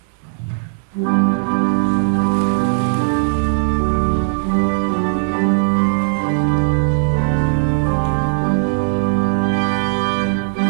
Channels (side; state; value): left; silent; digital silence